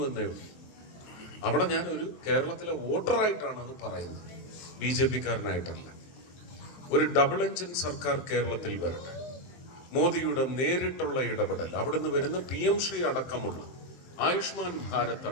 എന്നേ ഉള്ളൂ. അവിടെ ഞാനൊരു കേരളത്തിലെ വോട്ടറായിട്ടാണ് അത് പറയുന്നത്, BJP-കാരനായിട്ടല്ല. ഒരു ഡബിൾ എഞ്ചിൻ സർക്കാർ കേരളത്തിൽ വരട്ടെ. മോദിയുടെ നേരിട്ടുള്ള ഇടപെടൽ, അവിടുന്ന് വരുന്ന PM ശ്രീ അടക്കമുള്ള, ആയുഷ്മാൻ ഭാരത്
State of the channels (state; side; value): late; right; 23 ms